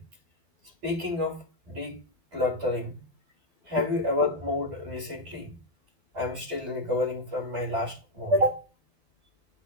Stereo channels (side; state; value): left; late; 12 ms